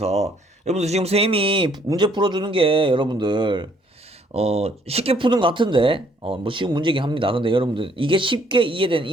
여러분들 지금 선생님이 문제 풀어주는 게 여러분들 쉽게 푸는 것 같은데 뭐 쉬운 문제긴 합니다. 근데 여러분들 이게 쉽게 이해된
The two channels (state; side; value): normal; both; correlation 0.64